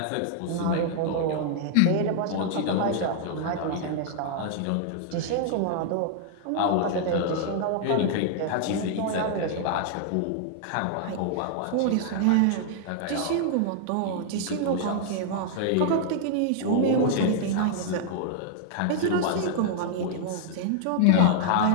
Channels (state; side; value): different; both; correlation -0.01